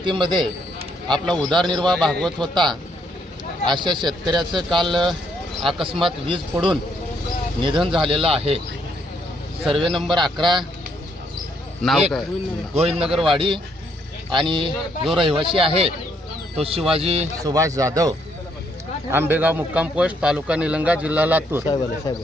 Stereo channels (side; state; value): both; normal; correlation 0.72